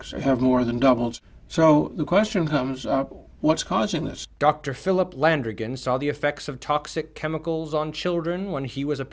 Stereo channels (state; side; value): identical; both; correlation 1.00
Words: have more than doubled. So the question comes up, what's causing this? Dr. Philip Landrigan saw the effects of toxic chemicals on children when he was a